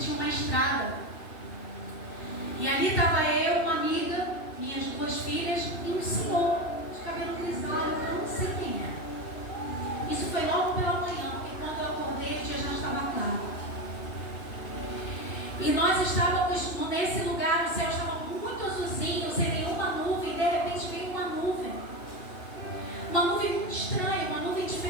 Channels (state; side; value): late; right; 2.9 ms